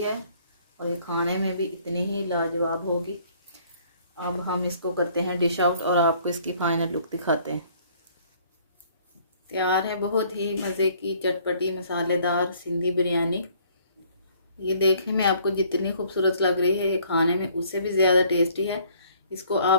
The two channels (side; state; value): both; inverted; correlation -0.60